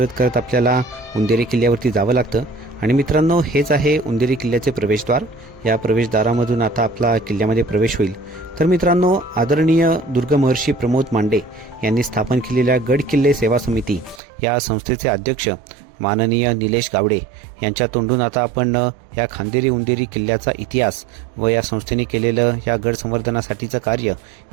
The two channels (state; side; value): drops out; left; at 14.2 s